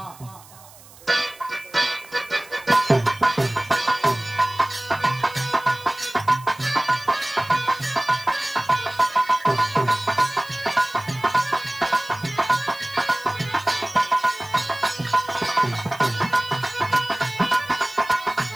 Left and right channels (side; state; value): right; noise; hiss, 22 dB below the sound